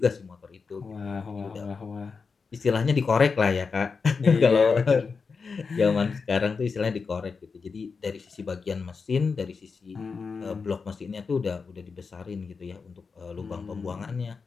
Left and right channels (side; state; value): right; quieter; 5.0 dB